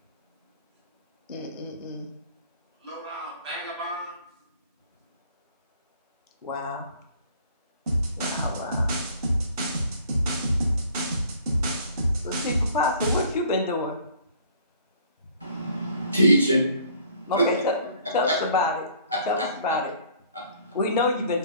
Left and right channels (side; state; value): both; inverted; correlation -0.55